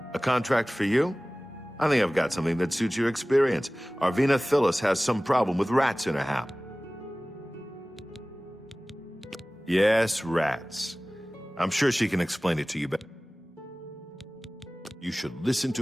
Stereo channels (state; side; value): normal; both; correlation 0.98